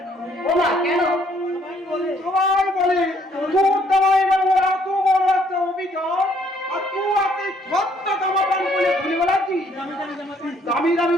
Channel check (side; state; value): both; normal; correlation 0.65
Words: ও মা, কেন? সবাই বলে তোর জামাই বাবু এত বড় একটা অভিযোগ, আর তুই এত ছোট্ট জামা প্যান্ট বলে ঘুরে বেড়াচ্ছিস। দামি দামি